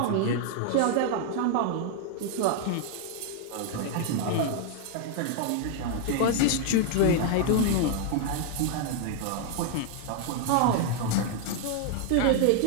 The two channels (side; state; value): both; different; correlation 0.00